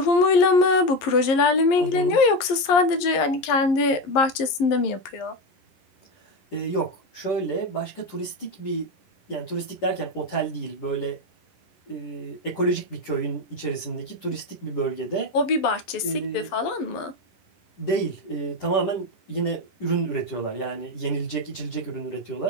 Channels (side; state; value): right; late; 11 ms